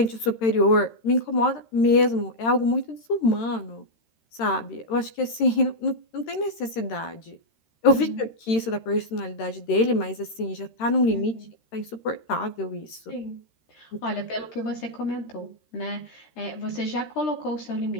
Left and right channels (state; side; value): late; right; 13 ms